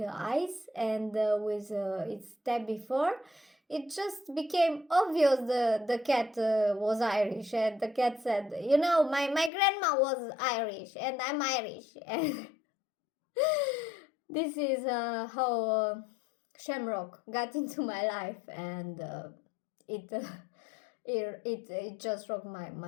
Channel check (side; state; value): right; drops out; at 9.5 s